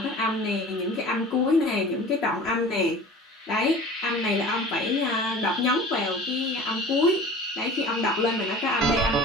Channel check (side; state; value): both; normal; correlation 0.41